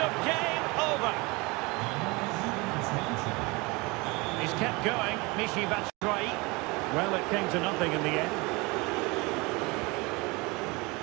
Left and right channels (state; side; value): quieter; left; 25.5 dB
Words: Kept going, Michi Batshuayi. Well, it came to nothing in the end.